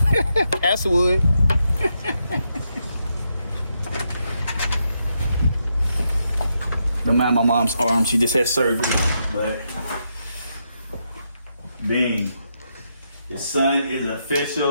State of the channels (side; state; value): both; inverted; correlation -0.82